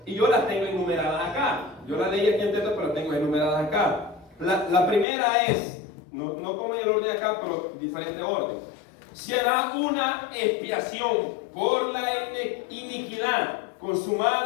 y yo las tengo enumeradas acá. Yo las leí aquí en texto, pero las tengo enumeradas acá. La primera es, no como en el orden acá, pero diferente orden. Será una expiación por la iniquidad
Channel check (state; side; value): drops out; right; at 5.1 s